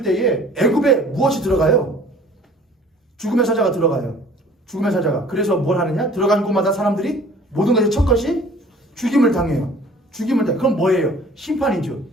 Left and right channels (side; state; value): both; normal; correlation 0.51